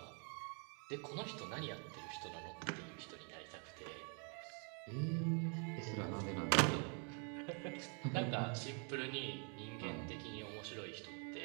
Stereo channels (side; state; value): left; quieter; 38.8 dB